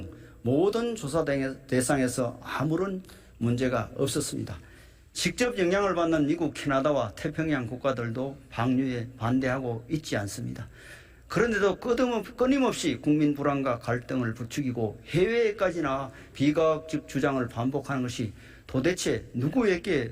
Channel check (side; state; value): both; identical; correlation 1.00